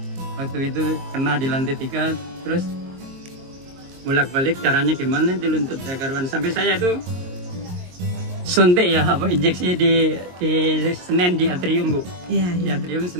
Waktu itu kena di lantai 3 terus bolak-balik, caranya gimana di lutut karuan sampai saya itu suntik ya, apa injeksi di Senen di atrium Bu. Iya, Di iya. atrium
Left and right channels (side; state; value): left; late; 22 ms